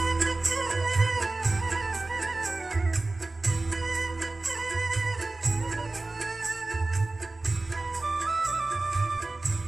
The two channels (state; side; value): quieter; left; 3.2 dB